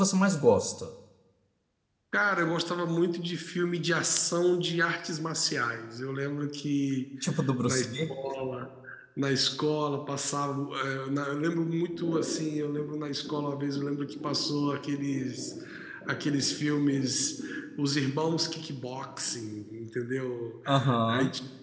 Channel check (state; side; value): identical; both; correlation 1.00